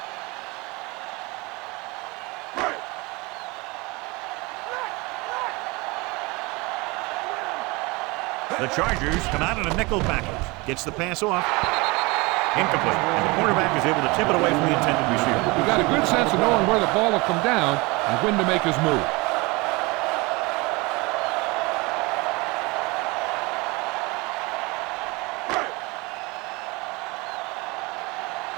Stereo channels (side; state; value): left; quieter; 25.2 dB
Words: The Chargers come out in a nickel package. Gets the pass off. Incomplete. And the quarterback is able to tip it away from the intended receiver. He got a good sense of knowing where the ball will come down and when to make his move.